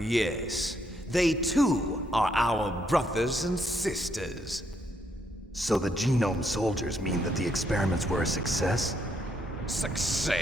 they too are our brothers and sisters. So the genome soldiers mean that the experiments were a success?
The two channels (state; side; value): normal; both; correlation 0.74